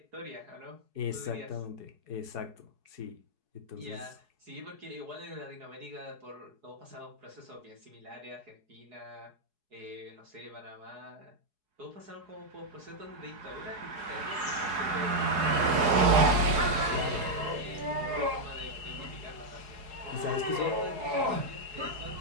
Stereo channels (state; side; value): late; left; 4.7 ms